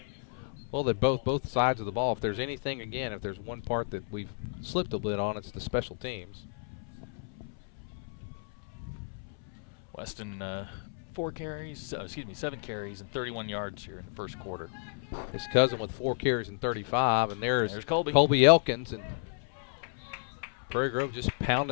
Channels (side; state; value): right; silent; 56 dB below the other